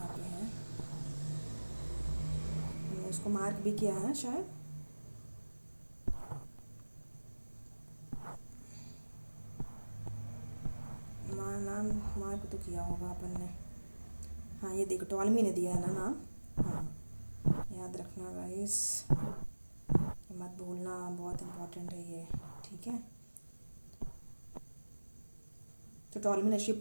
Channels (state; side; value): inverted; both; correlation -1.00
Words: पे है, हमने इसको मार्क भी किया है शायद। नाम मार्क तो किया होगा अपन ने। हाँ ये देखो टॉलमी ने दिया है ना नाम। हाँ याद रखना गाइस, मत भूलना, बहुत इम्पोर्टेंट है ये, ठीक है। तो टॉलमी ने